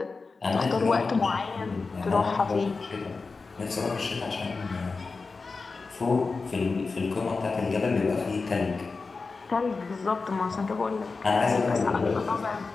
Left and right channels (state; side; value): quieter; right; 4.2 dB